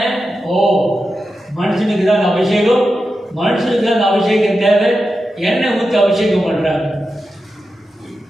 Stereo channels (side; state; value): both; normal; correlation 0.90